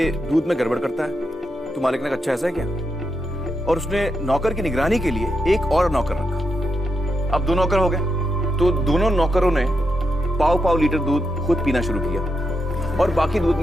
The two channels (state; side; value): normal; both; correlation 0.84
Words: दूध में गड़बड़ करता है। तो मालिक ने कहा अच्छा ऐसा है क्या, और उसने नौकर की निगरानी के लिए एक और नौकर रखा। अब 2 नौकर हो गए, तो दोनों नौकरों ने 1.5 लीटर दूध खुद पीना शुरू किया और बाकी दूध